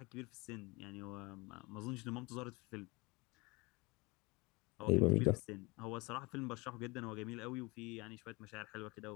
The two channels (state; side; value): quieter; right; 25.1 dB